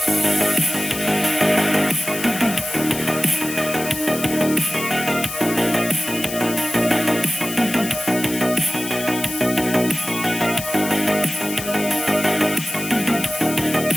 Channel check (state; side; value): noise; left; hiss, 8 dB below the sound